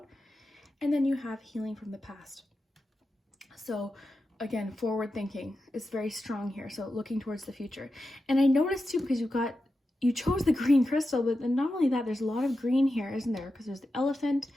And then you have healing from the past. So again, forward thinking is very strong here. So looking towards the future. And I noticed too, because you chose the green crystal, but then not only that, there's a lot of green here, isn't there? Because there's the elephant.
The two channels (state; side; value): normal; both; correlation 0.90